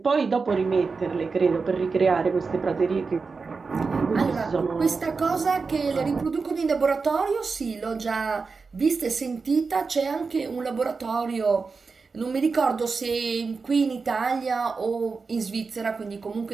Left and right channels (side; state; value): left; quieter; 4.6 dB